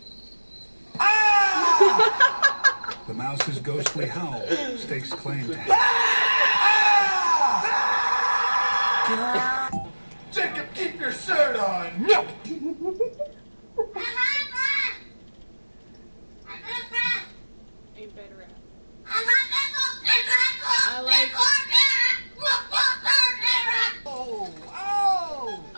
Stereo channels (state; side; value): inverted; both; correlation -1.00